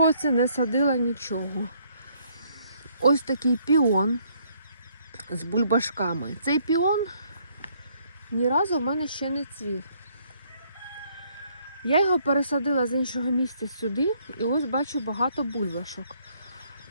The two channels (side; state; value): both; inverted; correlation -0.67